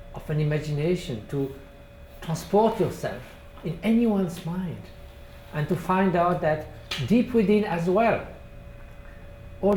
of an imagination to transport yourself in anyone's mind and to find out that deep within as well,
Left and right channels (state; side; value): identical; both; correlation 1.00